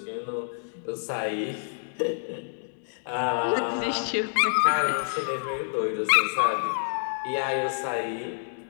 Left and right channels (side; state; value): right; silent; digital silence